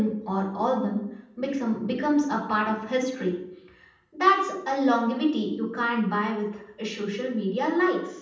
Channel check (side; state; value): both; identical; correlation 1.00